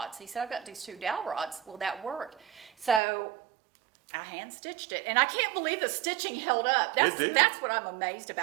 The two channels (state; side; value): drops out; left; at 3.0 s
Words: He said, I've got these 2 dowel rods. Will that work? So I hand stitched it, and I can't believe the stitching held up. It did. That's what I'm amazed